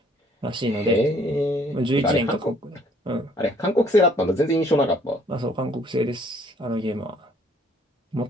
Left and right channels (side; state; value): both; normal; correlation 0.61